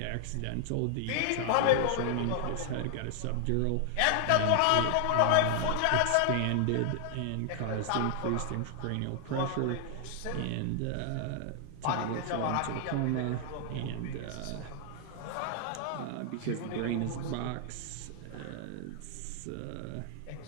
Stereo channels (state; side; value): different; both; correlation 0.00